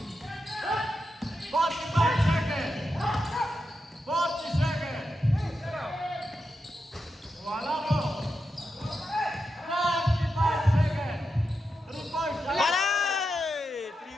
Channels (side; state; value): both; normal; correlation 0.87